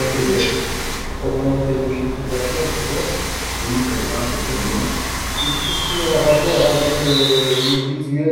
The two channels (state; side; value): identical; both; correlation 1.00